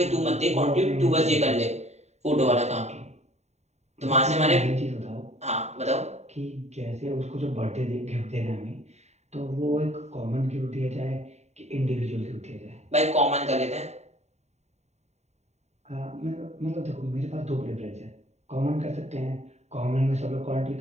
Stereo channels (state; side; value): late; left; 0.32 ms